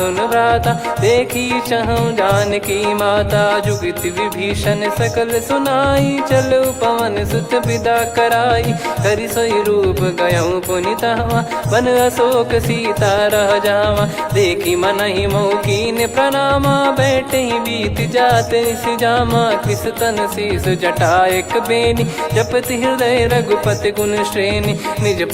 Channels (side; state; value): both; identical; correlation 1.00